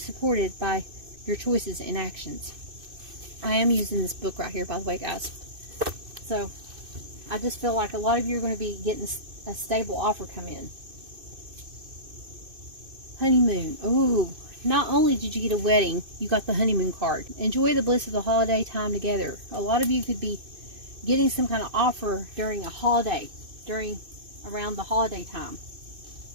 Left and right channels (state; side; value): late; left; 2.6 ms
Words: by your choices and actions. I am using this book right here, by the way, guys. So I just feel like a lot of you are going to be getting a stable offer come in. Honeymoon. Ooh. Not only did you get a wedding, you got the honeymoon card. Enjoy the bliss of the holiday time together. A lot of you could be getting some kind of offer during a holiday, around the holiday time.